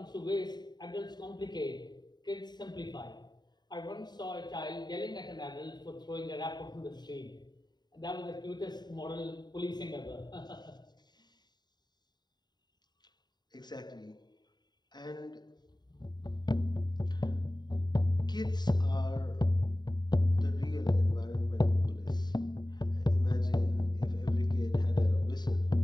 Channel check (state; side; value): late; right; 0.20 ms